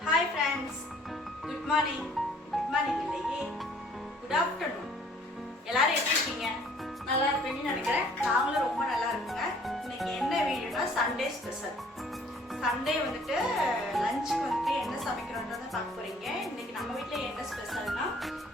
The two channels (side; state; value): both; normal; correlation 0.57